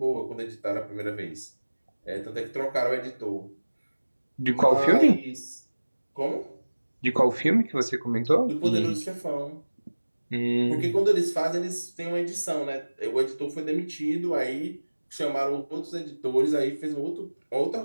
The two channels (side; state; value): both; inverted; correlation -1.00